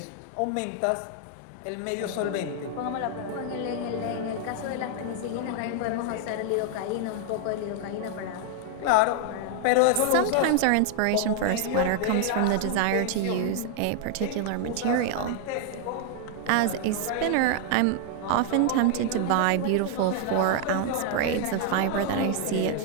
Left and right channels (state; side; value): different; both; correlation 0.00